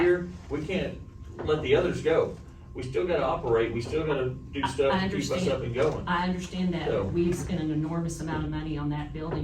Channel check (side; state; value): both; identical; correlation 1.00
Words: here, we can't let the others go. We still gotta operate, we still gotta do stuff I to keep us understand. up and going. I understand that, So- but we've spent an enormous amount of money on that